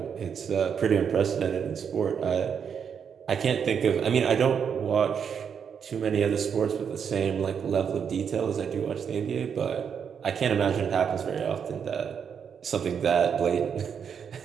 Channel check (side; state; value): left; quieter; 7.2 dB